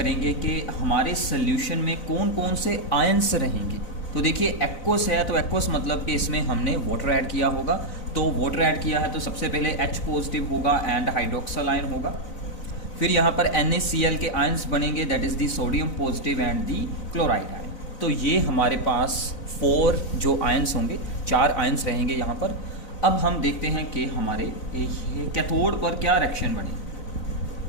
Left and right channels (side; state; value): right; late; 4.0 ms